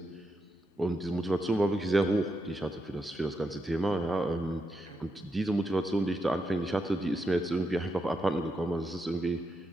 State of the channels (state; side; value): normal; both; correlation 0.84